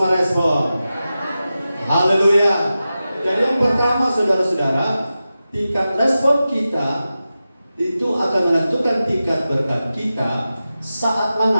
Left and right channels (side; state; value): both; inverted; correlation -0.93